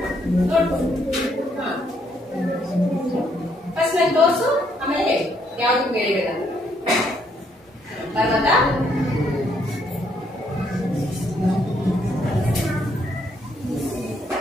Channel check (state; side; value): normal; both; correlation 0.71